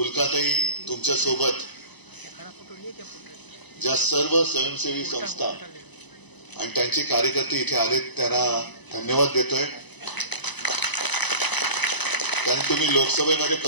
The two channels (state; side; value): late; right; 1.0 ms